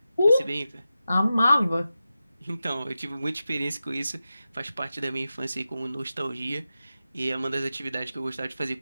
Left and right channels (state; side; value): inverted; both; correlation -0.92